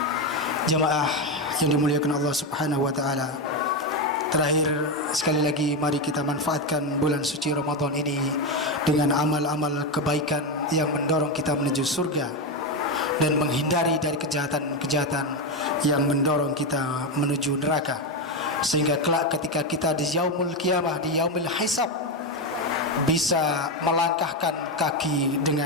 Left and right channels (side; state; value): both; normal; correlation 0.11